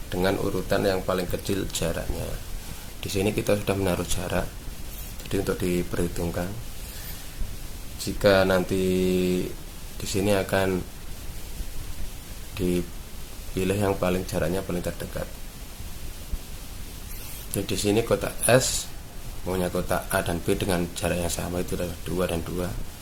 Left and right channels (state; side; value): identical; both; correlation 1.00